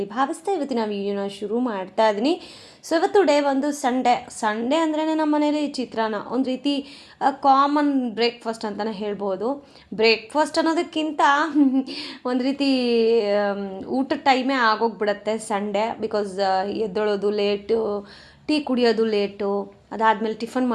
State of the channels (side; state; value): both; identical; correlation 1.00